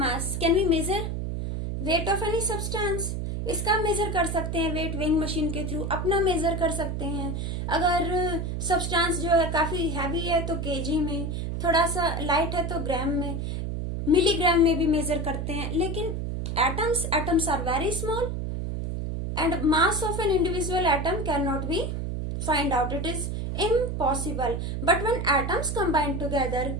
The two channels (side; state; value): right; noise; hum, 3 dB below the sound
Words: can we measure weight of any substance. इसका measure कर सकते हैं weight weighing machine के through. अपना measure कर सकते हैं. अगर सब्सटेंस जो है काफी हैवी है तो केजी में, थोड़ा सा लाइट है तो ग्राम में, मिलीग्राम में भी मेजर करते हैं. लेकिन atoms are very small and mass of an individual atom cannot be find out. It is impossible. But when atoms combine together